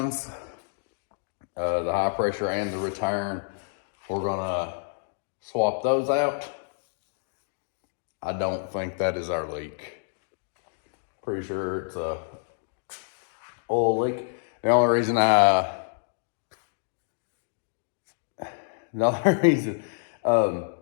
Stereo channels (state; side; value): silent; right; digital silence